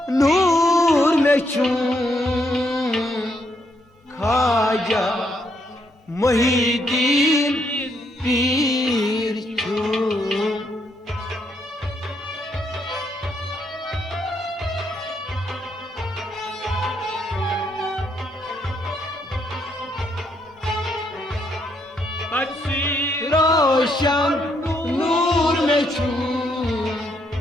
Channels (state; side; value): normal; both; correlation 0.75